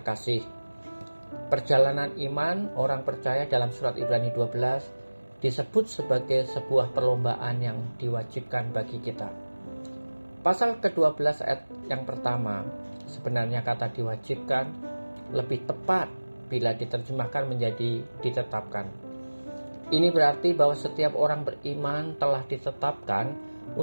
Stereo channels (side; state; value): both; inverted; correlation -1.00